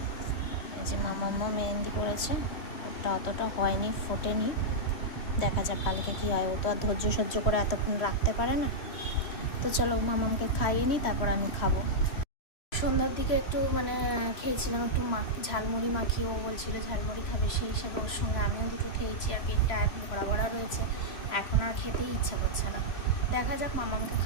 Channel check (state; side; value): late; right; 3.0 ms